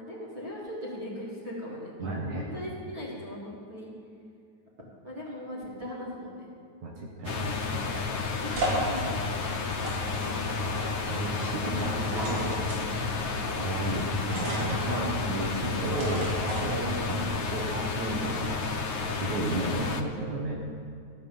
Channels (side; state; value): left; late; 9.3 ms